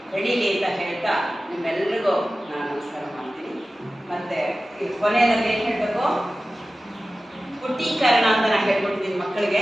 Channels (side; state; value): both; normal; correlation 0.96